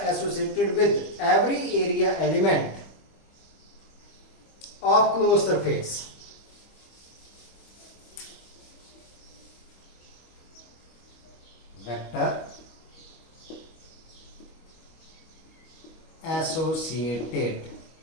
associated with every area element of closed surface vector associated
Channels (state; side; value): late; right; 25 ms